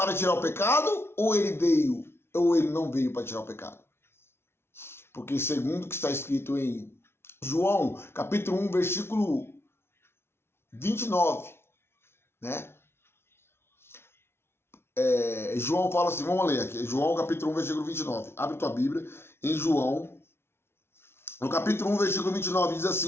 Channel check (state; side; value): late; right; 0.12 ms